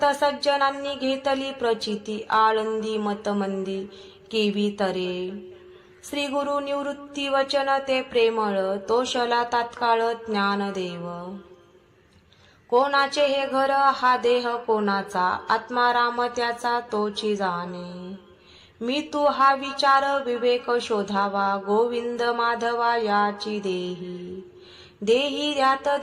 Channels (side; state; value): both; identical; correlation 1.00